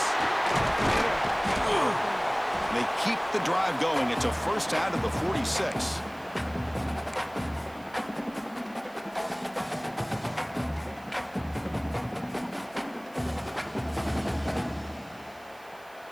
They keep the drive going. It's a first out of the 46.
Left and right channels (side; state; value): right; noise; hiss, 26 dB below the sound